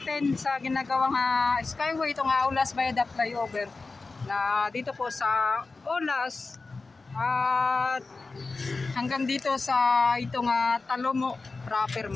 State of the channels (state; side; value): quieter; right; 3.8 dB